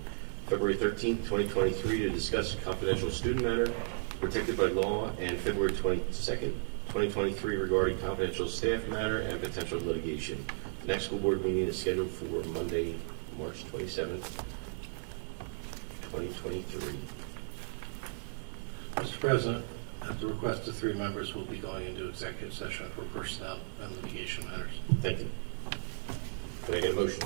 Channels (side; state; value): left; silent; digital silence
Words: February 13th, 2023 to discuss a confidential student matter protected by law, and February 22nd, 2023 regarding confidential staff matter and potential litigation. The next school board meeting is scheduled for Monday, March 27th, 2023. Mr. President, at the request of 3 members, we'll be going into executive session for personnel and litigation matters. Thank you. Can I get a motion